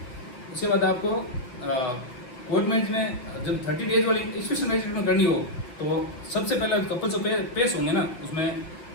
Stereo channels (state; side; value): late; right; 8.3 ms